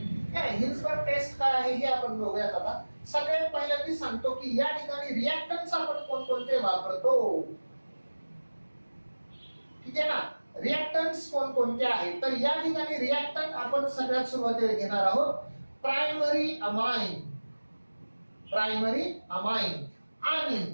हिन्सबर्ग टेस्ट काय आहे हे आपण बघूयात. आता सगळ्यात पहिल्यांदा सांगतो की या ठिकाणी रिएक्टंट्स आपण कोणकोणते वापरतो. ठीक आहे ना, रिएक्टंट्स कोणकोणते आहेत. तर या ठिकाणी रिएक्टंट आपण सगळ्यात सुरुवातीला घेणार आहोत प्रायमरी अमाइन. प्रायमरी अमाइन आणि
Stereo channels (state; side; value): inverted; both; correlation -1.00